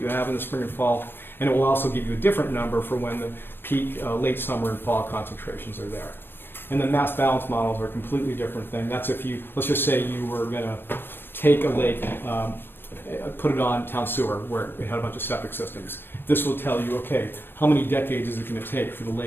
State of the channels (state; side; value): late; right; 0.099 ms